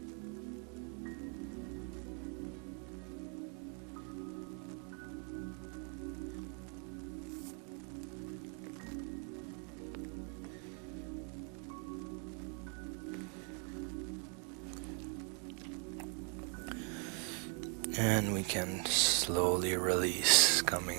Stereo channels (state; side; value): quieter; left; 39.2 dB